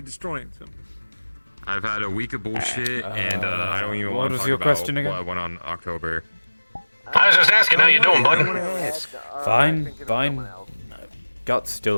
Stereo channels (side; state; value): both; inverted; correlation -1.00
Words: destroying something. I've had a week of bullshit, and I don't even what want to was talk your about question again? what went on October. I was just asking how you doing, bud. Fine, fine. Guts